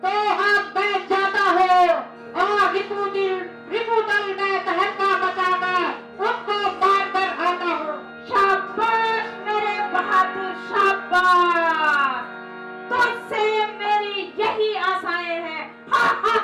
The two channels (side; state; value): both; identical; correlation 1.00